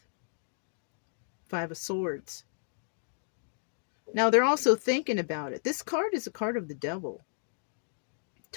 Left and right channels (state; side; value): silent; right; digital silence